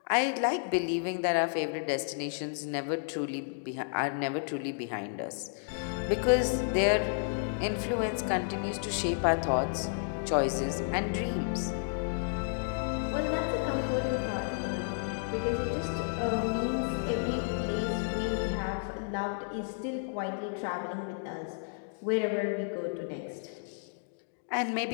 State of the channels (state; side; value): silent; right; digital silence